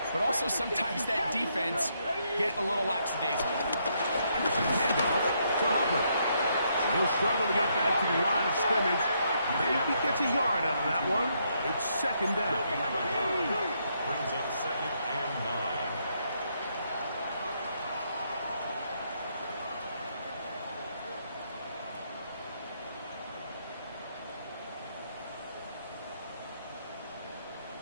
but also sometimes that defense get a little lackadaisical. Handoff to Hubbard. He'll struggle to get back to the line of scrimmage. Maybe he gets a yard out of that one. It's 2nd down. Brings up 2nd and 9.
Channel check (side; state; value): both; inverted; correlation -0.75